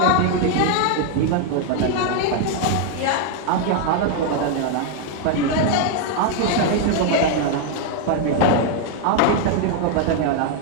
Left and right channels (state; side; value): different; both; correlation 0.00